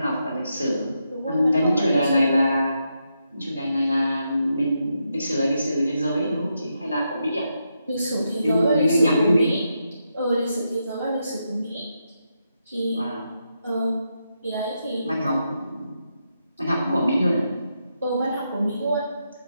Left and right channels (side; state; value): both; inverted; correlation -0.84